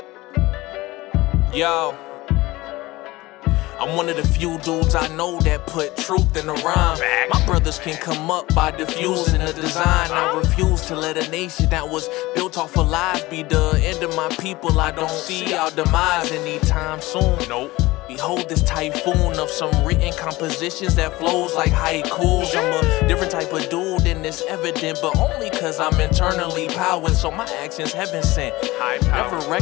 Yo, I'm one of the few dudes I know that put truth in the rhyme. My brothers can come up by diffusing the design. I refuse to let a nation that was built off of lies be the end of my people. I don't see our demise anytime soon. Nope. Behold this typhoon of some written compositions that flows like haikus. I'm a different type of dude and it's evident, but only cause I'm internally powered, so my actions heaven sent. Never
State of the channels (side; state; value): right; quieter; 19.8 dB